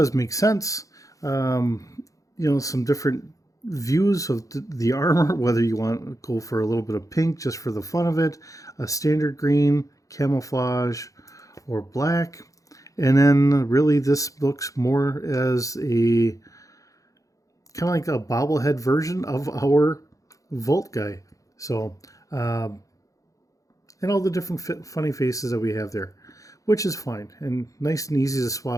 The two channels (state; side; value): late; right; 0.16 ms